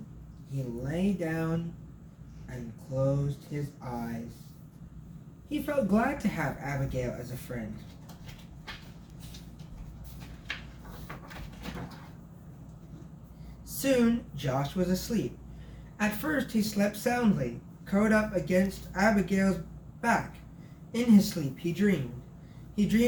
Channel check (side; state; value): both; identical; correlation 1.00